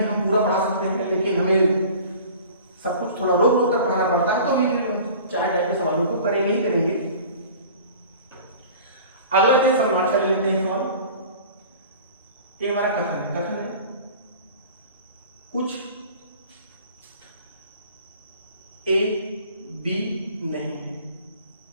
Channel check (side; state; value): both; inverted; correlation -0.43